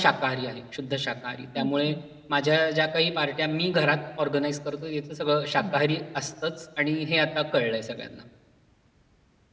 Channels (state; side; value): identical; both; correlation 1.00